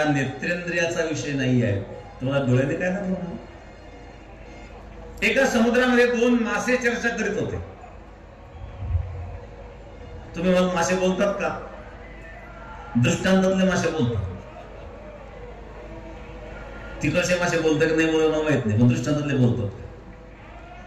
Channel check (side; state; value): both; identical; correlation 1.00